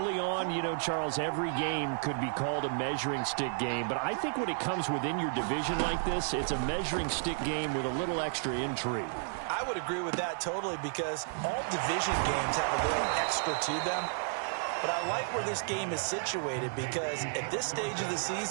on, you know, Charles, every game could be called a measuring stick game. But I think when it comes within your division like this, it's a measuring stick game with a little extra intrigue. I would agree with that totally because all division games have a little extra to them. But I like where this game is situated because at this stage of the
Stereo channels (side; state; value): left; silent; 56 dB below the other